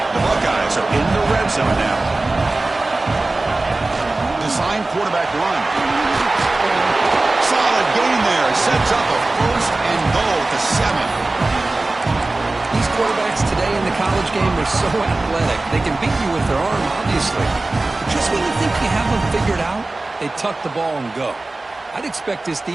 The Buckeyes are in the red zone now. Design quarterback run. Solid gain there. Sets up a first and goal to 7. These quarterbacks today in the college game are so athletic. They can beat you with their arm, obviously. But just when you think you have them figured out, they tuck the ball and go. I'd expect this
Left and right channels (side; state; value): left; quieter; 3.1 dB